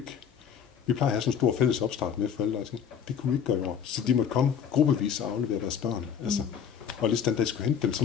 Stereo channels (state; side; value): quieter; right; 7.9 dB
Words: at have sådan en stor fælles opstart med forældre, og det kunne vi ikke gøre i år. Så de måtte komme gruppevis og aflevere deres børn. Altså, og hvis den dag skulle hente dem, så